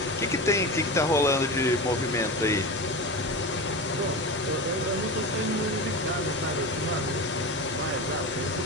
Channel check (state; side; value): normal; both; correlation 0.25